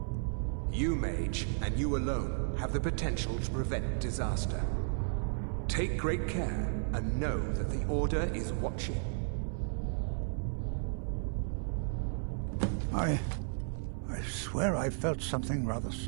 You, mage, and you alone, have the potential to prevent disaster. Take great care, and know that the Order is watching. I swear I felt something rather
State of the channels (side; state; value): left; silent; 55 dB below the other